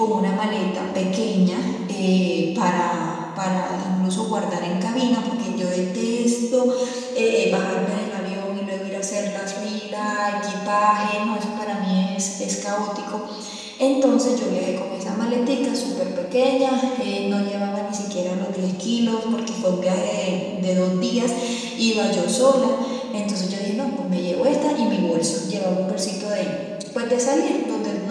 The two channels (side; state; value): both; identical; correlation 1.00